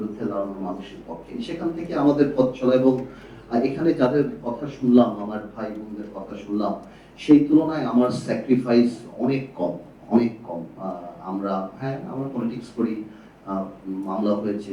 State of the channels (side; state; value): both; identical; correlation 1.00